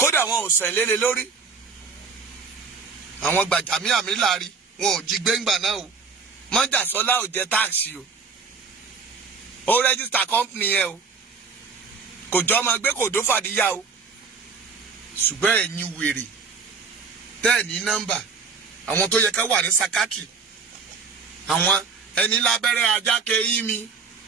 wọn ò sẹ̀ lélẹ̀ lórí àwọn Gbàjàmíàmí láàrí wọn ò jí gbẹ́ngbà náà o Mọ́jàsọ́lá ò jẹ táàsì o ó rẹ́gísítà company yẹn o kò jọ ọmọ gbé kò dó fàdíyà o ṣùgbọ́n ẹ̀yin wèrè tẹ́ẹ̀ ní nọ́mbà àwọn tó yẹ ká wà ní sakatri àwọn ẹni lábẹ́rẹ́ ajáke yín mi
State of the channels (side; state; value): left; quieter; 5.0 dB